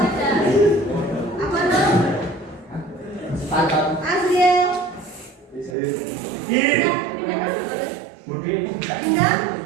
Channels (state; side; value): drops out; left; at 5.8 s